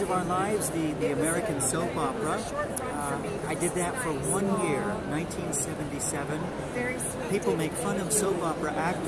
of Our Lives, the American soap opera. I did that for 1 year, 1977. People make fun of soap opera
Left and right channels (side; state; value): both; identical; correlation 1.00